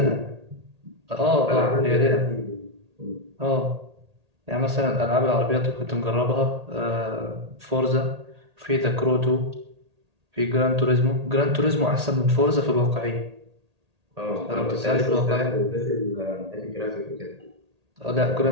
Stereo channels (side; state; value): left; late; 1.8 ms